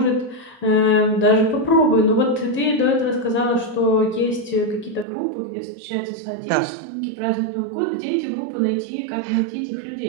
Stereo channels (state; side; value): drops out; left; at 5.1 s